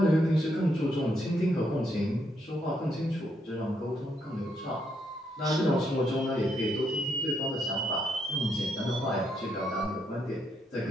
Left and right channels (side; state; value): both; normal; correlation 0.76